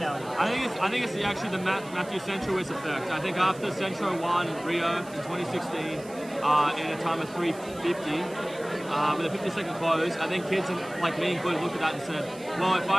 I think it's actually the Matthew Centrowitz effect. I think after Centro won Rio in 2016 in a time of 3:50 with a 50-second close, I think kids like me included looked at that and said, well, if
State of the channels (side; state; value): right; noise; hiss, 20 dB below the sound